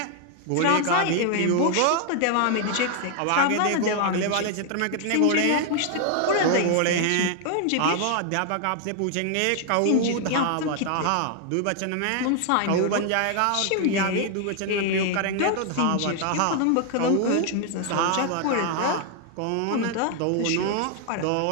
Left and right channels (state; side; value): different; both; correlation 0.00